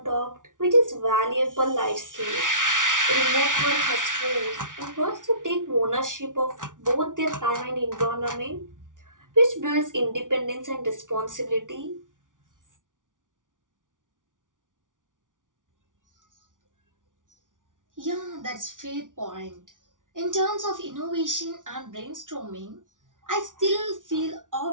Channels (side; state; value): left; late; 0.88 ms